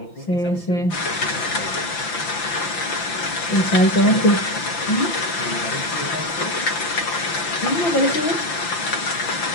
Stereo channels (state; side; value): late; right; 5.9 ms